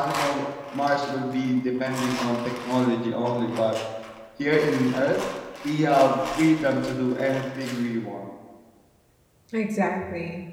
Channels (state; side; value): identical; both; correlation 1.00